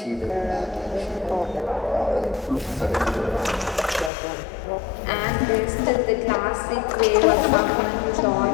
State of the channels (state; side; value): drops out; right; at 4.1 s